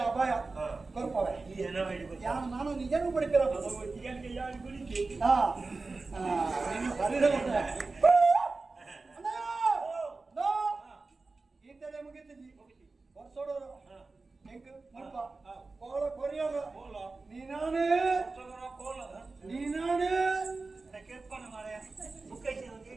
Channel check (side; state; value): left; quieter; 3.7 dB